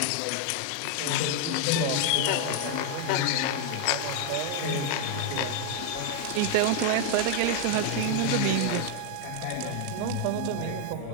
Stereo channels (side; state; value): both; different; correlation 0.00